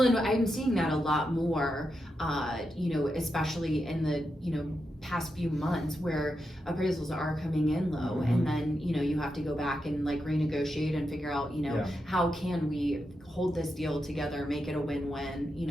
and I'm seeing that a lot more, especially in the, past few months where appraisals are coming in low, and then, you have to go back and like renegotiate and figure out, how can we hold this deal together, make it a win-win,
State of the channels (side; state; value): both; normal; correlation 0.86